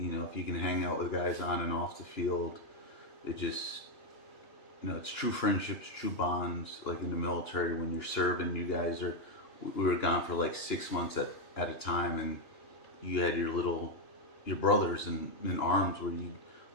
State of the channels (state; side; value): late; right; 2.9 ms